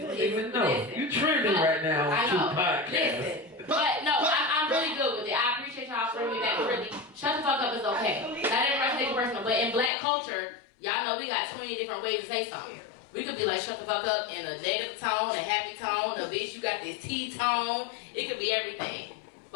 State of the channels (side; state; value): right; drops out; at 9.9 s